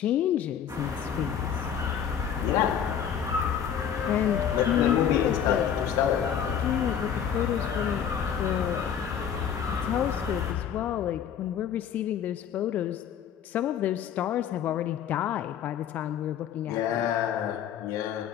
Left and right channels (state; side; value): quieter; right; 8.6 dB